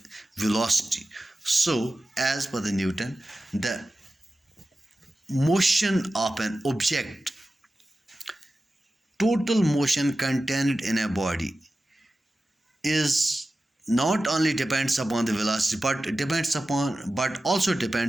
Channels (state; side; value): normal; both; correlation 0.94